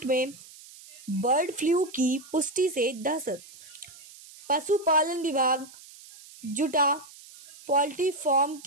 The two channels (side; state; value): right; noise; hiss, 20 dB below the sound